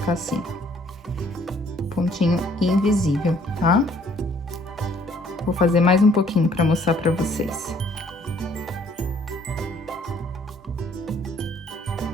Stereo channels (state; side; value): normal; both; correlation 0.61